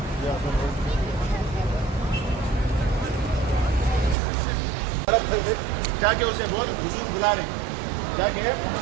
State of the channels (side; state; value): left; drops out; at 4.2 s